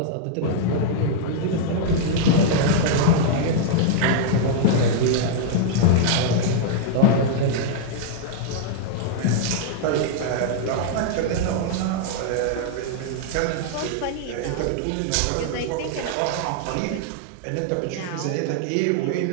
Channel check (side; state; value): both; different; correlation -0.01